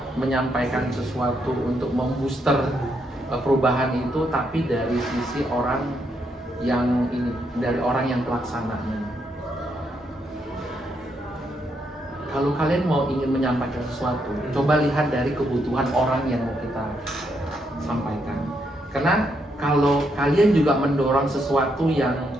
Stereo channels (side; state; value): both; normal; correlation 0.77